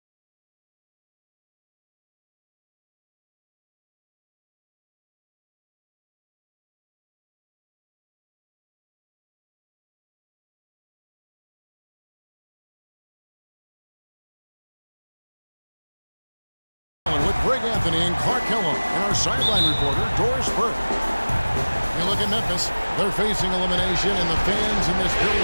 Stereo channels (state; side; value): inverted; both; correlation -1.00